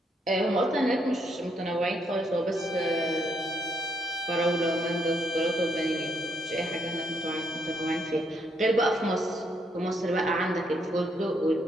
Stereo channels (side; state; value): both; normal; correlation 0.74